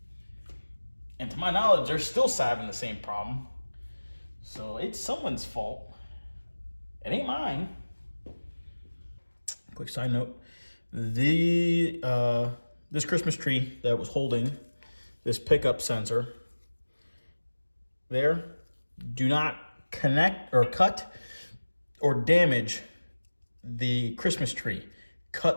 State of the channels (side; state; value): both; inverted; correlation -1.00